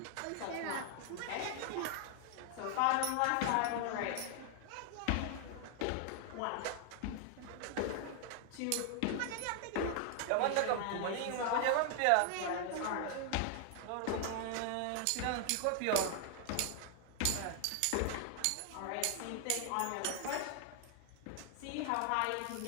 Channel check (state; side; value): different; both; correlation 0.00